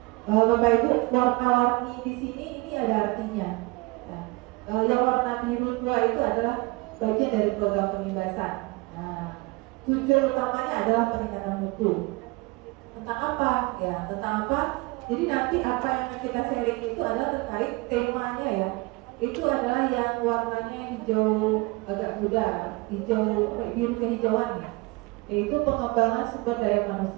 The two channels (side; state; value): left; quieter; 24.8 dB